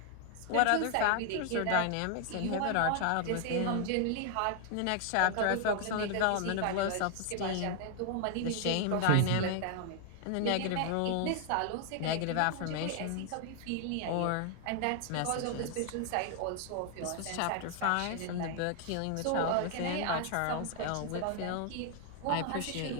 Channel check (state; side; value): different; both; correlation 0.00